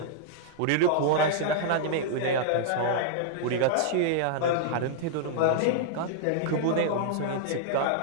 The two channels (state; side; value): different; both; correlation -0.02